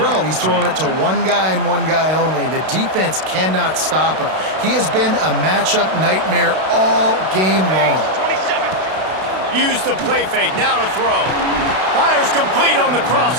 he's throwing it to one guy and one guy only. The defense cannot stop him. He has been a matchup nightmare all game long. Use the play fake, now to throw. Fires complete on the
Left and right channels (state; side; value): late; left; 32 ms